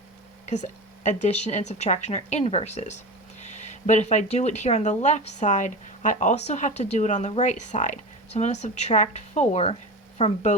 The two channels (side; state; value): both; normal; correlation 0.27